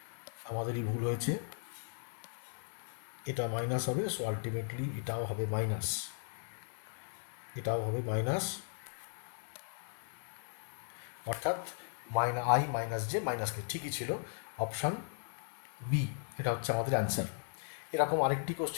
আমাদেরই ভুল হয়েছে, এটা মাইনাস হবে, সো আলটিমেটলি এটাও হবে মাইনাস, এটাও হবে মাইনাস। অর্থাৎ আই মাইনাস জে মাইনাস কে, ঠিকই ছিল অপশান বি, এটা হচ্ছে আমাদের অ্যান্সার। এরকম আরেকটি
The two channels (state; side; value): silent; right; digital silence